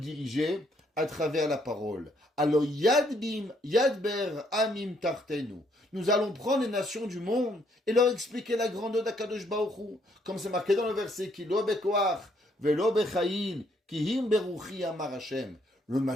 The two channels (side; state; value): both; normal; correlation 0.70